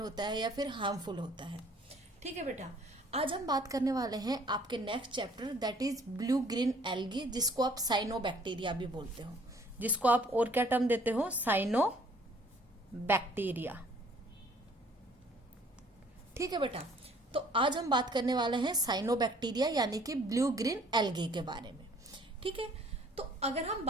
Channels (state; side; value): normal; both; correlation 0.58